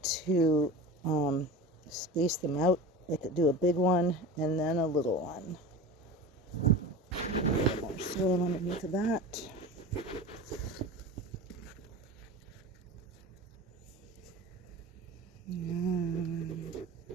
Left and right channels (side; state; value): both; normal; correlation 0.32